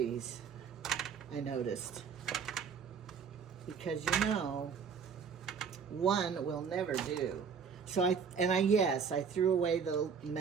I noticed. Because you know, one will never do. So I threw away the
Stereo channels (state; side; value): quieter; left; 6.4 dB